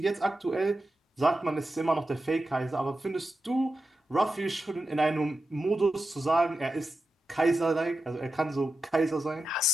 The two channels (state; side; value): normal; both; correlation 0.90